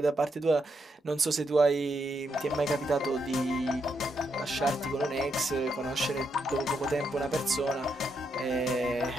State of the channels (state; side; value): normal; both; correlation 0.80